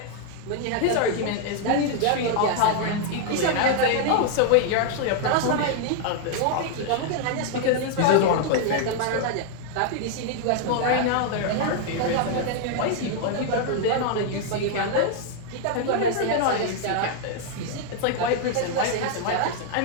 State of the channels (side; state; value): both; different; correlation 0.00